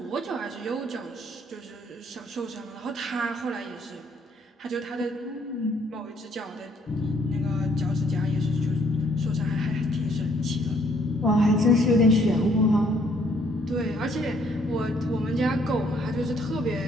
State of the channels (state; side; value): normal; both; correlation 0.65